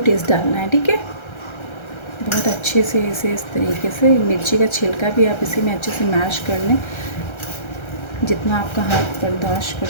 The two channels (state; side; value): late; right; 1.3 ms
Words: टेस्ट डालना है, ठीक है। बहुत अच्छे से इसे इस तरीके से, मिर्ची का छिलका भी आप इसी में अच्छे से मैश कर लें, जितना आपका हाथ बर्दाश्त कर